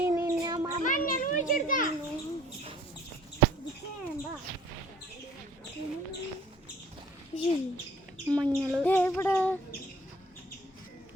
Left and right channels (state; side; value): normal; both; correlation 0.53